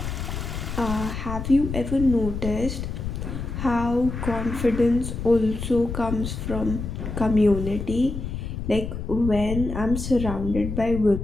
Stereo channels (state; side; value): noise; left; rumble, 5 dB below the sound